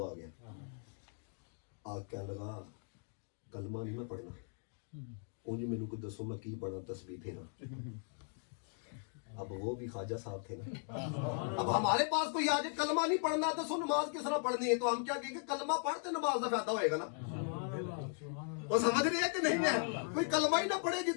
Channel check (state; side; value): silent; right; 52 dB below the other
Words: آ گیا، آگ کہنے لگا کلمہ نہیں میں پڑھنا، اونج میرے کو دسو میں کی پڑھنا، تسبیح پھیرا۔ اب وہ بھی خواجہ صاحب تھے نا، اب ہمارے پاس کوئی آج کلمہ نہیں پڑھنا تو سو نماز کس طرح پڑھنی ہے، تو ہم کیا کہیں گے کلمہ پڑھتے نماز کا فائدہ ہوئے گا نا۔ وہ سمجھ رہی ہے کہ نہیں ہے؟ کوئی کلمہ ہی نہ پڑھے